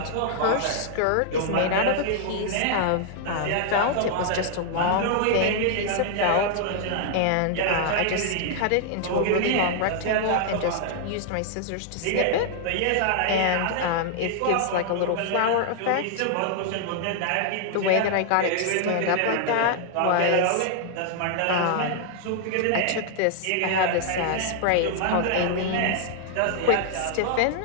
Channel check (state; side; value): different; both; correlation -0.01